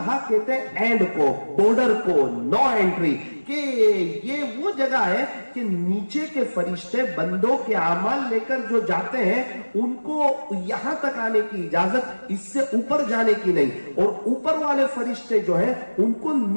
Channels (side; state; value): both; inverted; correlation -1.00